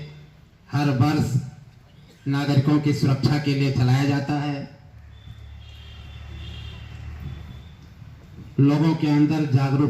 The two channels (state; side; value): identical; both; correlation 1.00